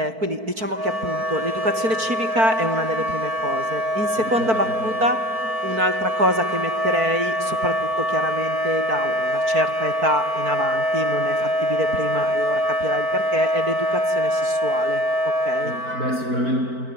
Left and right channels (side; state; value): left; late; 4.5 ms